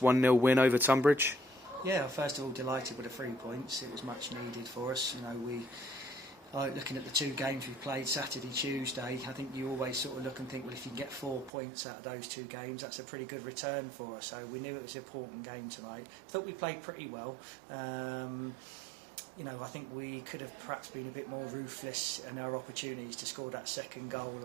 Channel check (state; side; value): drops out; left; at 11.5 s